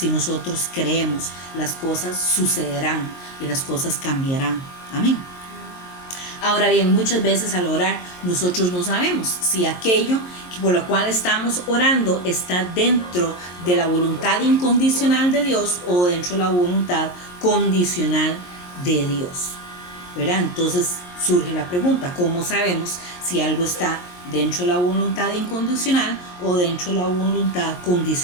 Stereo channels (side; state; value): right; late; 22 ms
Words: nosotros creemos, las cosas sucederán y las cosas cambiarán. Amén. Ahora bien, muchas veces al orar nosotros no sabemos si aquello por lo cual estamos orando está dentro de la voluntad incondicional de Dios o dentro de la voluntad condicional de Dios, ¿verdad? Entonces surge la pregunta, ¿cómo sabemos si algo está dentro de la voluntad incondicional o dentro de la voluntad